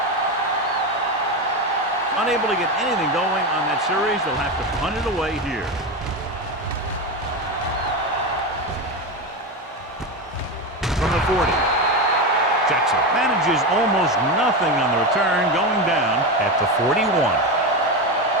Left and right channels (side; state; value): both; normal; correlation 0.17